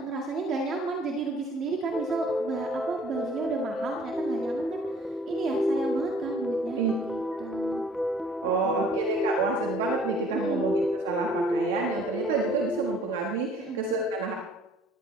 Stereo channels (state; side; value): normal; both; correlation 0.56